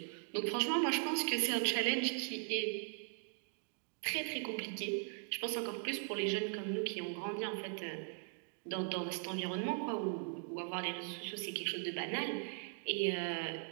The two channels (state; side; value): silent; left; 51 dB below the other